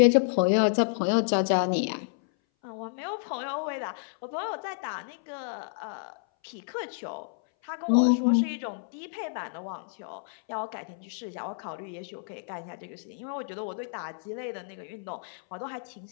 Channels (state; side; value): silent; right; 58 dB below the other